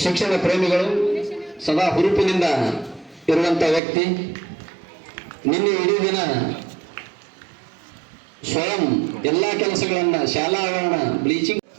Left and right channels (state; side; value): drops out; left; at 3.8 s